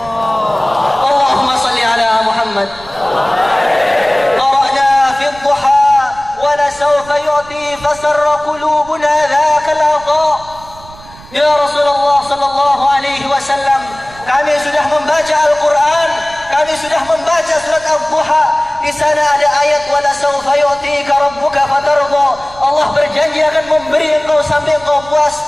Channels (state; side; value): noise; right; rumble, 20 dB below the sound